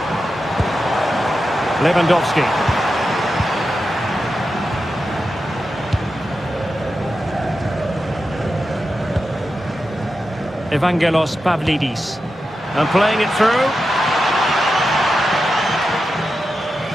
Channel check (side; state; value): both; normal; correlation 0.90